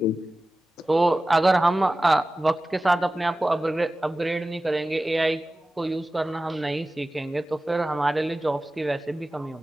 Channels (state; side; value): normal; both; correlation 0.96